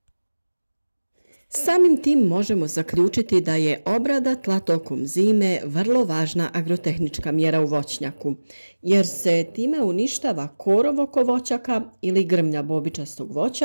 Samim tim možemo zaključiti da je obrada tla tokom zime vrlo važna agrotehnička mjera u voćnjaku, jer se time uništava korov oko voćaka ili grmlja bobičastog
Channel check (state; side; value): inverted; both; correlation -1.00